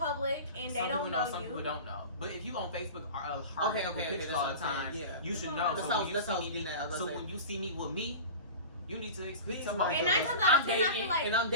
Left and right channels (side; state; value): both; inverted; correlation -0.33